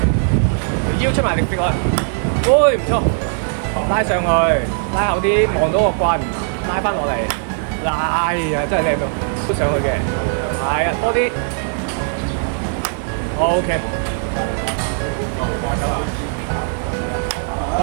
條腰出埋力揈落去，喂，唔錯。拉上去，拉後啲，望到個棍，拉翻落嚟，哎呀，真係靚到，都上去嘅，係啊，多啲 ，OK，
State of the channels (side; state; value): left; silent; 67 dB below the other